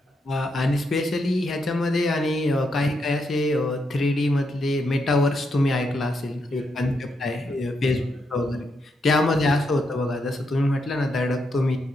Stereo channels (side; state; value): both; normal; correlation 0.81